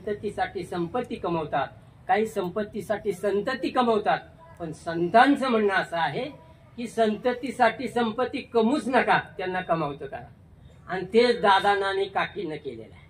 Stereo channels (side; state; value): both; identical; correlation 1.00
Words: संपत्ती कमवतात, काही संपत्तीसाठी संतती कमवतात, पण संतांचं म्हणणं असं आहे की संततीसाठी संपत्ती कमवूच नका, त्यांना कमावतं करा, आणि तेच दादांना आणि काकीनं केलेलं आहे।